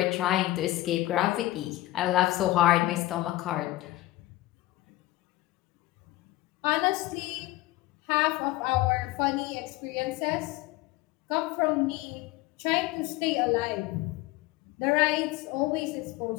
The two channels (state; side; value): quieter; right; 17.4 dB